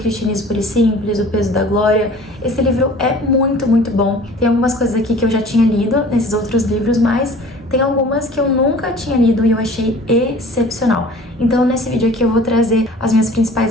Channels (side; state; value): both; normal; correlation 0.46